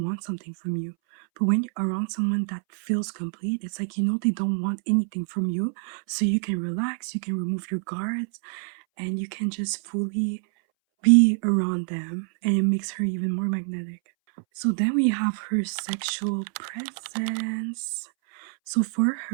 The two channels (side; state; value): left; silent; 61 dB below the other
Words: something from you. But when you're around someone that feels complete, it's like you know they don't want anything from you. So you can relax, you can remove your guards, and you can just fully be around them. And it makes her even more magnetic. So then we have her sexual presence. So for